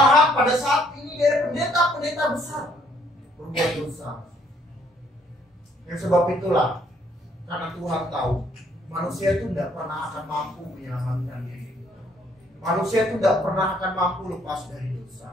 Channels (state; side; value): normal; both; correlation 0.66